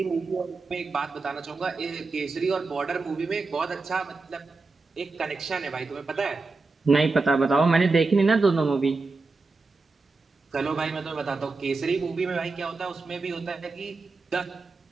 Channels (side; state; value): left; quieter; 3.9 dB